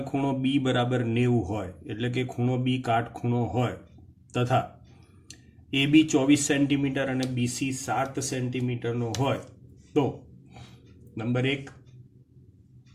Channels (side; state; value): both; identical; correlation 1.00